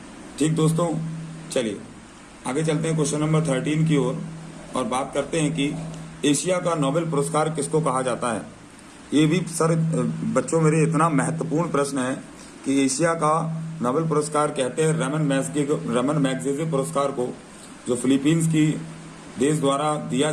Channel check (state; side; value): identical; both; correlation 1.00